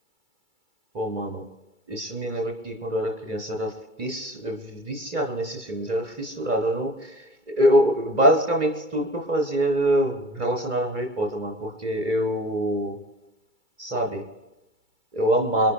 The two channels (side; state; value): left; late; 2.3 ms